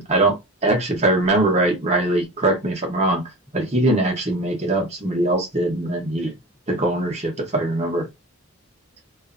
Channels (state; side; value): normal; both; correlation 0.33